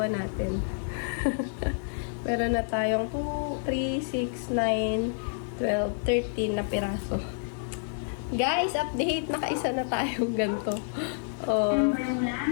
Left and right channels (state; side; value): silent; right; digital silence